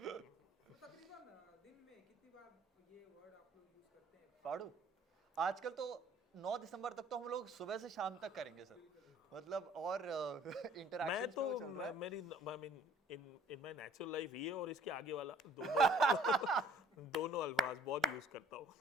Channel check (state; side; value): normal; both; correlation 0.55